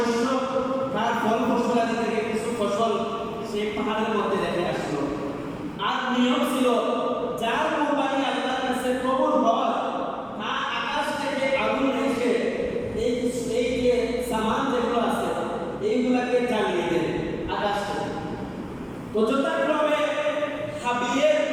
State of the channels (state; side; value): identical; both; correlation 1.00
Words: তার ফল ফসলাদি থেকে কিছু ফসল সেই পাহাড়ের মধ্যে রেখে আসলো। আর নিয়ম ছিল যার কুরবানি আল্লাহর কাছে কবুল হয় তা আকাশ থেকে আগুন এসে এই যে সামান যেগুলো আছে এইগুলাকে জ্বালিয়ে দেয় আকাশ থেকে। তো যথাক্রমে হাবিলের